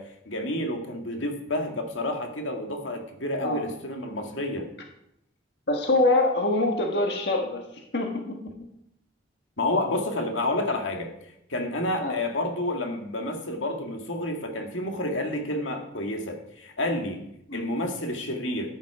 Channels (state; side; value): normal; both; correlation -0.02